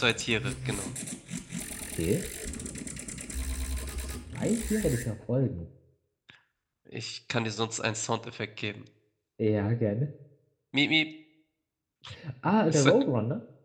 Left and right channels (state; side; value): identical; both; correlation 1.00